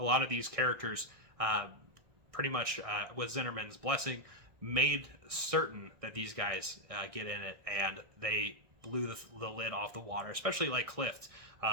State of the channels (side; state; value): left; late; 1.6 ms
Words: lot of these characters, pretty much with Zinnerman's blessing, made certain that these guys get in it, and they blew the lid off the water, especially like Clift,